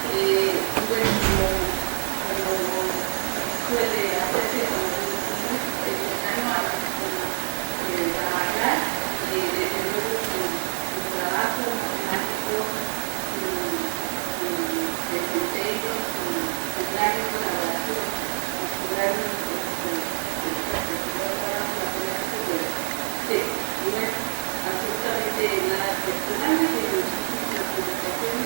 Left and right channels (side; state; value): left; silent; digital silence